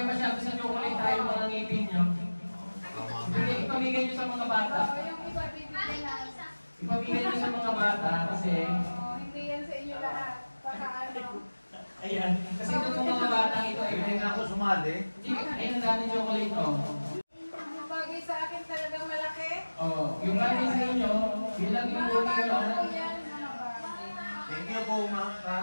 masyado sa chocolate tayo mga ngipin nyo. Ipamigay nyo sa mga bata. Oh, yung iba bibigyan na. Ipamigay nyo sa mga bata kasi Oh, hindi yan sa inyo lahat. Baka ano. ayan. Kasi ito yung mga bata ito ay Hindi nga ako sumali. ayun ang dami chocolate oh. Yung bagay sa akin talagang malaki. Oh, yung bagay sa inyo, bilang yung Mga buhay bago nyo. po yan, mga bago. Thank you po, ma.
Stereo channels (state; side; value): inverted; both; correlation -1.00